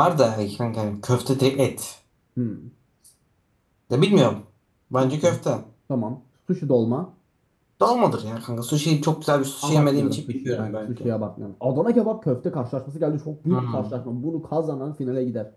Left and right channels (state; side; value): identical; both; correlation 1.00